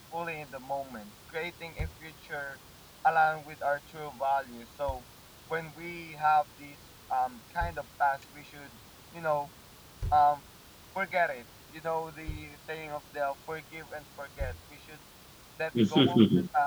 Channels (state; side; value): identical; both; correlation 1.00